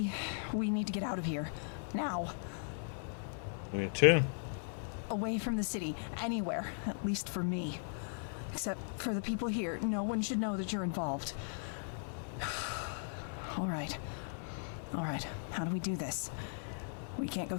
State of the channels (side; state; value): right; silent; 53 dB below the other